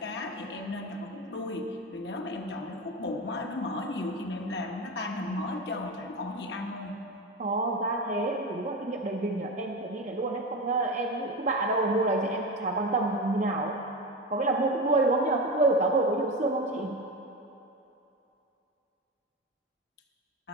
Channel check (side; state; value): both; normal; correlation 0.22